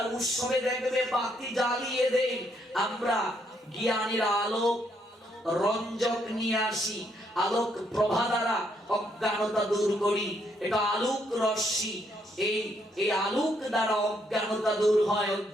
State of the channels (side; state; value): both; normal; correlation 0.73